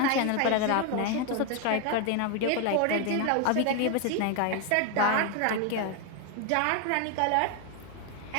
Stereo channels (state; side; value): different; both; correlation 0.01